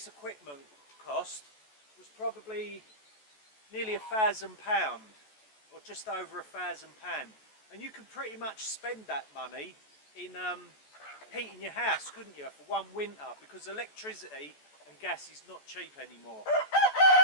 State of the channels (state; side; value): late; right; 14 ms